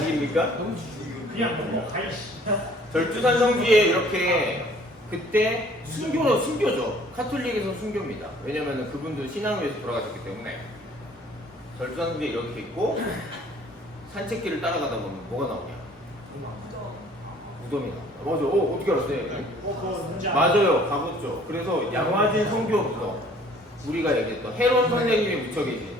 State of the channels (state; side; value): normal; both; correlation 0.55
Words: 그냥 너무 가이씨. 절주산 성지에 이렇게 그때 순교죠. 카톨릭에서 순교입니다. 왜냐면 그분도 신앙을 위해서 돌아가셨기 때문에 절주산 성지에 이렇게 있고 산책길을 따라가다 보면 뭐가 나오냐? 무덤이 나옵니다. 맞아. 어떻게 알았어요? 그거 문제 아니야. 맞아요. 가봤죠. 그래서 양화진 성교 무덤 우리가 얘기했던 헤론 선생님이 묻혀 계신